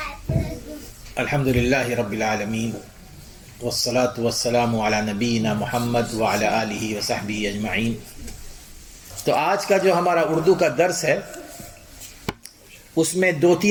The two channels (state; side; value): identical; both; correlation 1.00